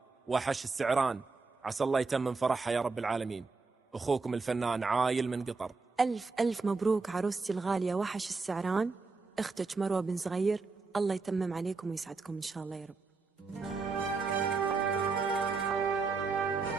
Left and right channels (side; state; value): left; quieter; 4.2 dB